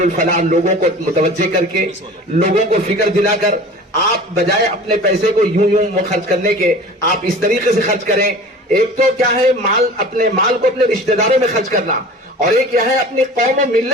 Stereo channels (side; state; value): both; normal; correlation 0.40